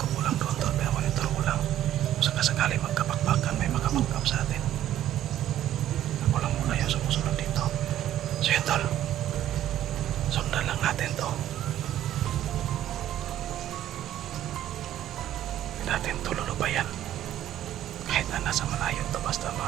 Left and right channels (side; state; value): left; quieter; 12.3 dB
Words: ko lang doon tol, pero monitor ko lang. Sakasakali magkapakpakan, may makapagkap sa atin. Ako lang muna yung sumusunod dito. So yun tol, sundan lang natin to. Hindi natin to lulubayan. Kahit na nasa malayo to, basta